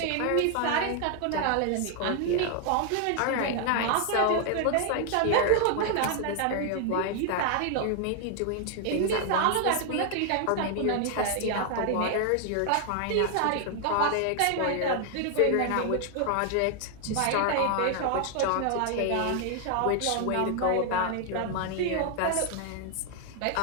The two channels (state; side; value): different; both; correlation 0.00